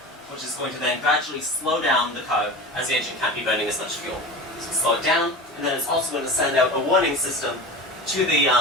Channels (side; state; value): both; normal; correlation 0.31